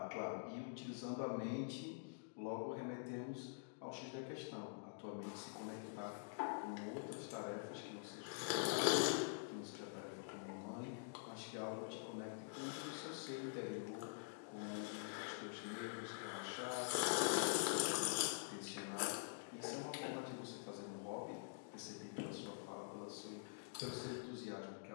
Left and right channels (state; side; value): silent; right; digital silence